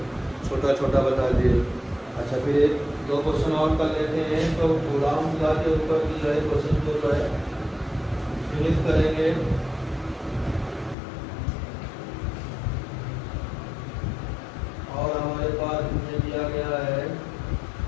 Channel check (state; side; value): drops out; right; at 11.0 s